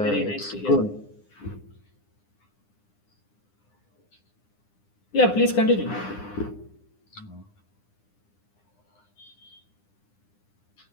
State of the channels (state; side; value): late; right; 9.8 ms